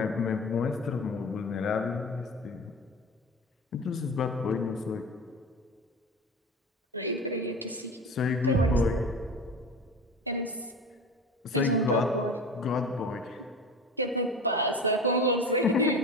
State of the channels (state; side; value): normal; both; correlation 0.32